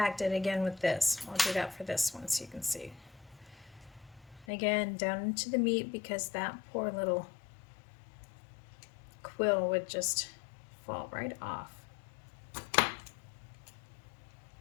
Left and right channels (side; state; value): right; drops out; at 4.5 s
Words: it again with this. I'll do that for this one so you can see. Again, down into the meat because that poor little quill would just fall right off. I'm